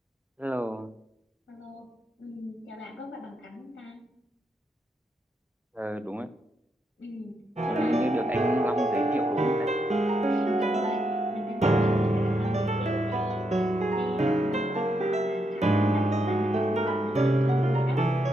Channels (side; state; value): both; normal; correlation 0.81